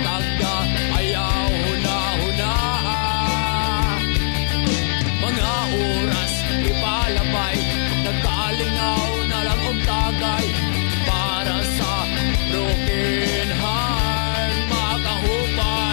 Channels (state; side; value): silent; right; 60 dB below the other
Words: tagda, ayaw huna-huna. Mga oras ipalabay, nagkalingaw na lang og tagay para sa broken heart.